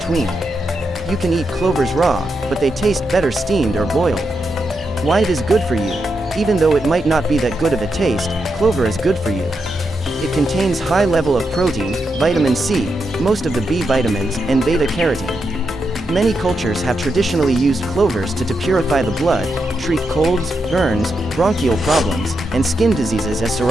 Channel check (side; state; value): both; normal; correlation 0.84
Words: You can eat clovers raw, but they taste better steamed or boiled. Why it is good for you? Even though it might not be that good of a taste, clover is good for you. It contains high level of protein, vitamin C, most of the B vitamins, and beta-carotene. Many cultures have traditionally used clovers to purify the blood, treat colds, burns, bronchial problems, and skin diseases as